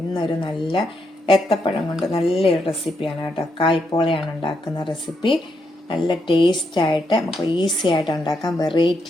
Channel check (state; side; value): normal; both; correlation 0.80